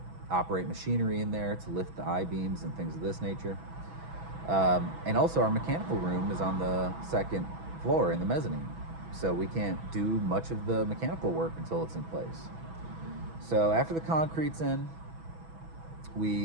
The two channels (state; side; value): late; left; 6.1 ms